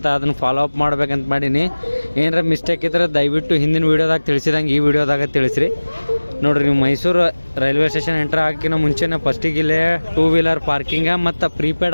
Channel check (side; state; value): both; inverted; correlation -1.00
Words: ಅದನ್ನು ಫಾಲೋ ಅಪ್ ಮಾಡ್ಬೇಕಂತ ಮಾಡೀನಿ. ಏನಾರ ಮಿಸ್ಟೇಕ್ ಇದ್ರೆ ದಯವಿಟ್ಟು ಹಿಂದಿನ ವೀಡಿಯೋದಾಗ ತಿಳಿಸಿದಂಗೆ ಈ ವಿಡಿಯೋದಾಗ ತಿಳಿಸ್ರಿ. ನೋಡಿರಿ, ನೀವು ಮೈಸೂರು ರೈಲ್ವೆ ಸ್ಟೇಷನ್ ಎಂಟ್ರ್ ಹಾಕಿನ ಮುಂಚೆನೇ ಫಸ್ಟಿಗೆ ಇಲ್ಲೇ 2 ವೀಲರ್ ಪಾರ್ಕಿಂಗ ಮತ್ತು